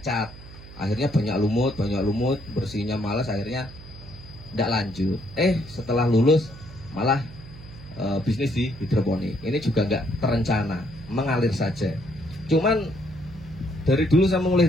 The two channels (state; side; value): noise; right; hum, 17 dB below the sound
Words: cat. Akhirnya banyak lumut, bersihnya malas, akhirnya tidak lanjut. Setelah lulus malah bisnis di hidroponik. Ini juga nggak terencana, mengalir saja. Cuman dari dulu saya mulai